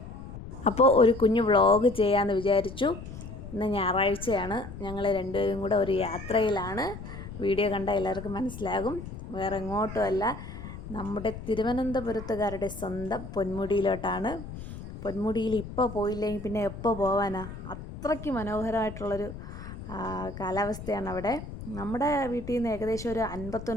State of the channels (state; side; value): noise; left; rumble, 11 dB below the sound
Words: അപ്പോൾ ഒരു കുഞ്ഞു വ്ളോഗ് ചെയ്യാമെന്ന് വിചാരിച്ചു. ഇന്ന് ഞായറാഴ്ചയാണ്, ഞങ്ങൾ രണ്ടുപേരും കൂടെ ഒരു യാത്രയിലാണ്. വീഡിയോ കണ്ടാൽ എല്ലാവർക്കും മനസ്സിലാകും, വേറെ എങ്ങോട്ടുമല്ല, നമ്മുടെ തിരുവനന്തപുരത്തുകാരുടെ സ്വന്തം പൊന്മുടിയിലോട്ടാണ്. പൊന്മുടിയിൽ ഇപ്പോൾ പോയില്ലെങ്കിൽ പിന്നെ എപ്പോൾ പോകാനാ? അത്രയ്ക്ക് മനോഹരമായിട്ടുള്ളൊരു കാലാവസ്ഥയാണ് അവിടെ. നമ്മുടെ വീട്ടിൽ നിന്ന് ഏകദേശം ഒരു